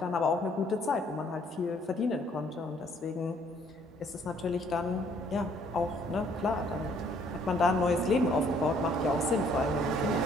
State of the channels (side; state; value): both; normal; correlation 0.63